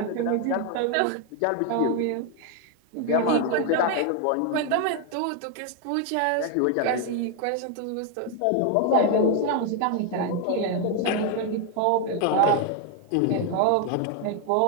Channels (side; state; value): both; different; correlation 0.01